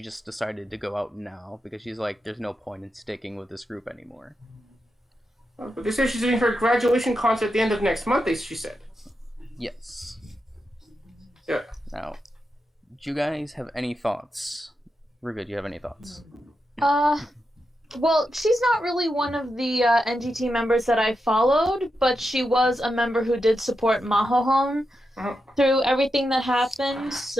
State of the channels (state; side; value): normal; both; correlation 0.87